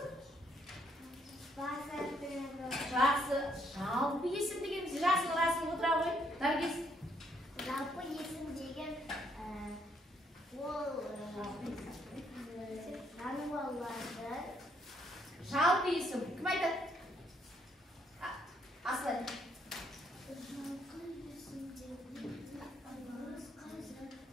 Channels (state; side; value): normal; both; correlation 0.71